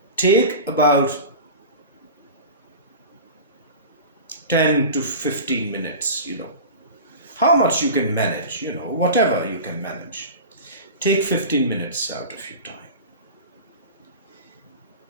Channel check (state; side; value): inverted; both; correlation -0.33